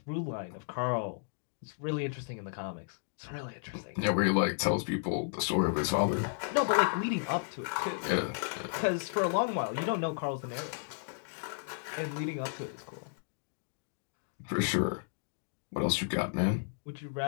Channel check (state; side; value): silent; right; digital silence